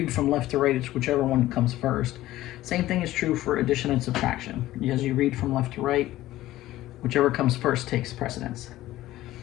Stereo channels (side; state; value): right; quieter; 15.5 dB